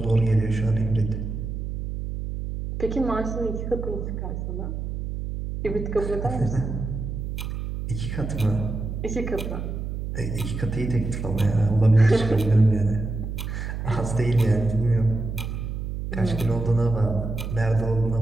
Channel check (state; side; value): noise; right; hum, 5 dB below the sound